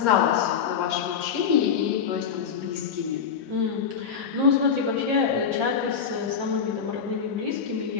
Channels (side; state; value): right; quieter; 6.9 dB